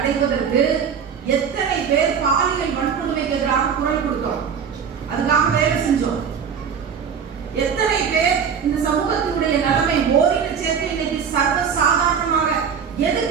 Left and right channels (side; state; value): left; quieter; 7.0 dB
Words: எத்தனை பேர் பாலியல் வன்கொடுமைக்கு எதிராக குரல் கொடுத்தோம், அதுக்காக வேலை செஞ்சோம். எத்தனை பேர் இந்த சமூகத்தினுடைய நிலைமை ஓரின சேர்க்கை இன்னைக்கு சர்வ சாதாரணமாக,